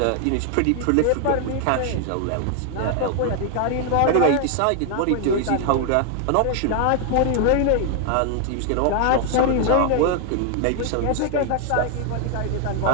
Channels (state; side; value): different; both; correlation 0.00